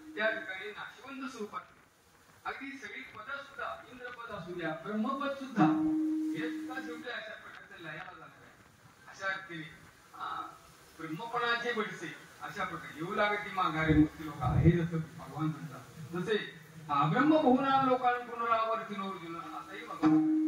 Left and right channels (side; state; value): both; identical; correlation 1.00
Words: त्या ठिकाणी नाशिवंत स्वरूपात, अगदी सगळी पद सुद्धा, इंद्रपद असू द्या, ब्रह्मपद सुद्धा, हे सुद्धा शेवटी अशा प्रकारचे लयाला झालं. अशा केली ब्रह्मपणाचे बडसे अशा प्रकारे येऊ लागते माघारे मुक्ती लोक, हे जसं भगवान म्हणतात तसे ब्रह्म बहुना लोकांना पुनरावर्ती अर्जुन असंही भगवान.